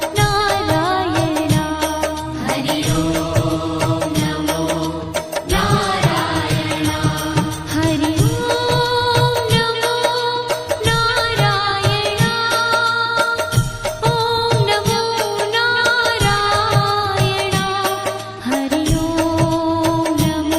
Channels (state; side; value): identical; both; correlation 1.00